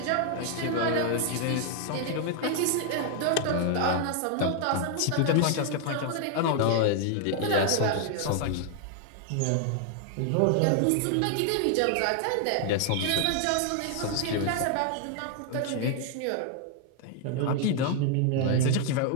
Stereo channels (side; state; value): both; different; correlation 0.00